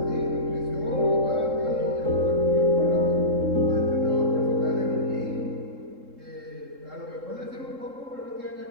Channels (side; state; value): left; late; 3.7 ms